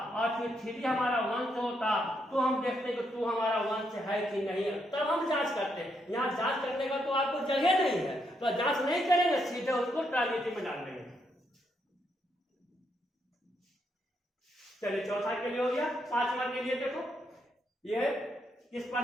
और फिर 3 हमारा 1 से होता, तो हम देखते कि 2 हमारा 1 से है कि नहीं है, तब हम जांच करते हैं। यहाँ जांच करने का तो आपको जगह नहीं है, तो जांच नहीं करेंगे, सीधे उसको ट्रांजिटिव में डाल देंगे। चलिए चौथा के लिए हो गया। 5वां के लिए देखो, ये किस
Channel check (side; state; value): both; normal; correlation 0.78